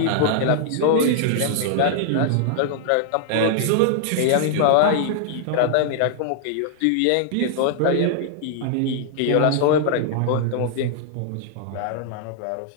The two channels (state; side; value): different; both; correlation -0.01